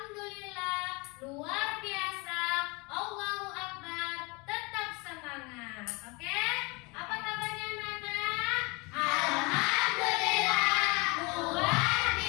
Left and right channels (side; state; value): right; quieter; 27.4 dB